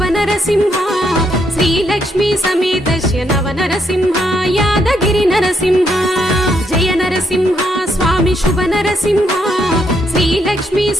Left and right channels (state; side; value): normal; both; correlation 0.75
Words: నరసింహ శ్రీలక్ష్మీ సమేతస్య నవ నరసింహ యాదగిరి నరసింహ జయ నరసింహ స్వామి శుభ నరసింహ శ్రీలక్ష్మీ